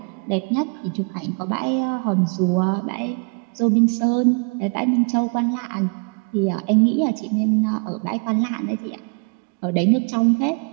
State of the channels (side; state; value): left; quieter; 37.2 dB